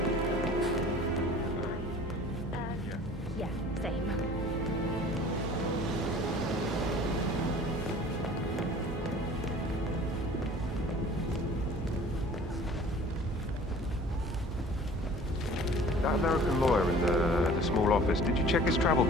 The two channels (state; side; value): normal; both; correlation 0.47